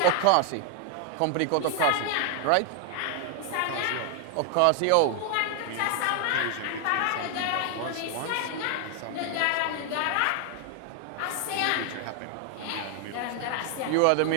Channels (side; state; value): both; different; correlation 0.00